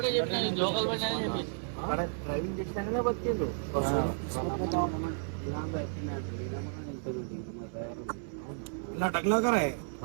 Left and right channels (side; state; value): left; silent; 56 dB below the other